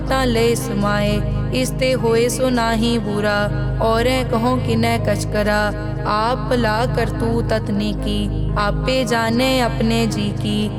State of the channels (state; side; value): identical; both; correlation 1.00